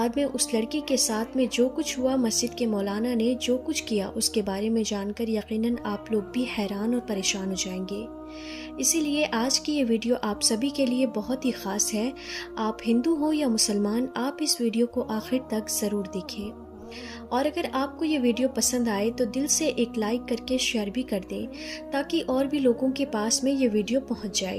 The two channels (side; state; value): both; identical; correlation 1.00